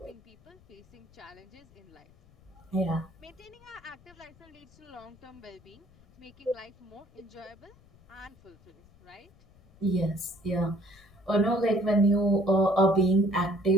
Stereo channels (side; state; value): left; noise; rumble, 27 dB below the sound